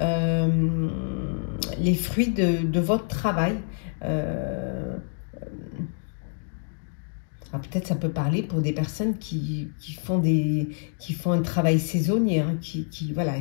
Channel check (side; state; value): right; silent; digital silence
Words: les fruits de votre travail. Peut-être ça peut parler pour des personnes qui font un travail saisonnier, hein, voilà,